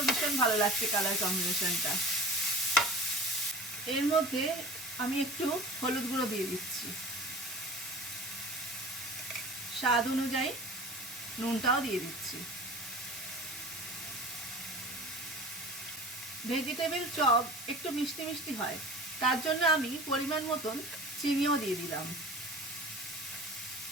ভীষণ ভালো লাগছে কালার কম্বিনেশনটা। এর মধ্যে আমি একটু হলুদ গুঁড়ো দিয়ে দিচ্ছি, স্বাদ অনুযায়ী নুনটাও দিয়ে দিচ্ছি। ভেজিটেবিল চপ একটু মিষ্টি মিষ্টি হয়, তার জন্য আমি পরিমাণ মতন চিনিও দিয়ে দিলাম।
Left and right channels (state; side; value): normal; both; correlation 0.39